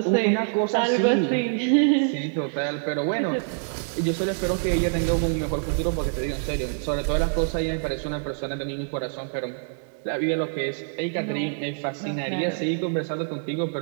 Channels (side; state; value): left; silent; digital silence